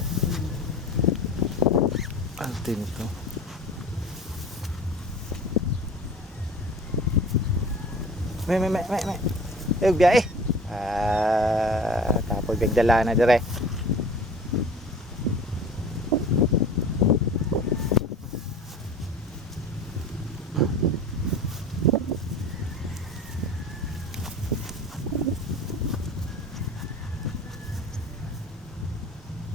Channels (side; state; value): both; normal; correlation 0.40